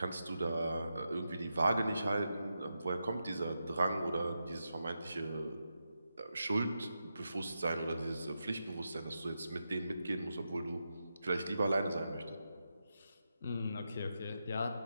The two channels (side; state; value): both; inverted; correlation -0.87